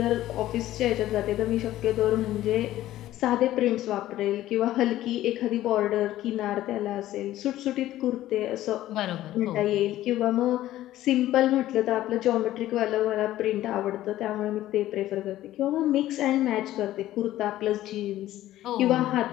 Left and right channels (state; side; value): quieter; right; 14.3 dB